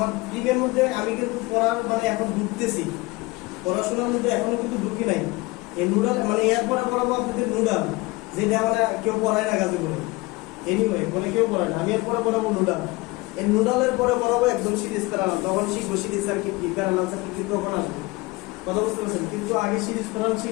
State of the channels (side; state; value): right; quieter; 23.0 dB